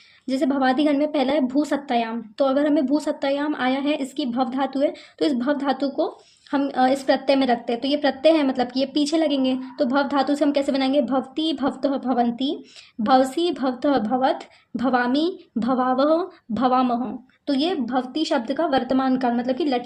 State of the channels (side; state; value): both; identical; correlation 1.00